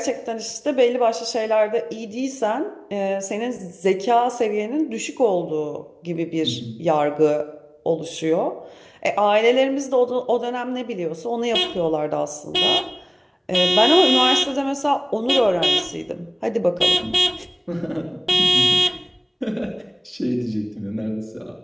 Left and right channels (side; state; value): both; identical; correlation 1.00